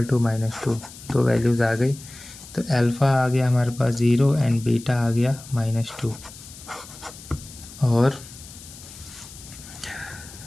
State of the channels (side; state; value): left; noise; hiss, 17 dB below the sound